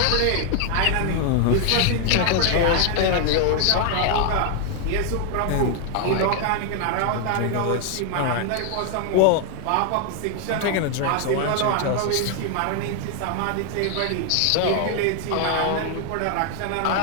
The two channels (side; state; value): both; different; correlation 0.00